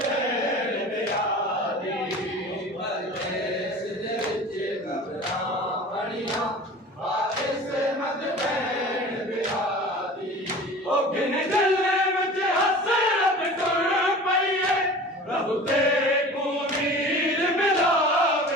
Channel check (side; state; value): both; normal; correlation 0.39